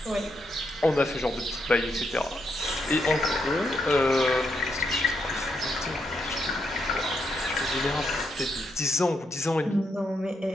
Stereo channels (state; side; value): normal; both; correlation 0.80